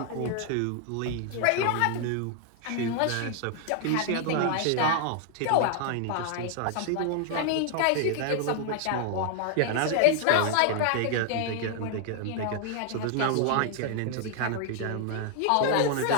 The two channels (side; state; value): both; different; correlation 0.00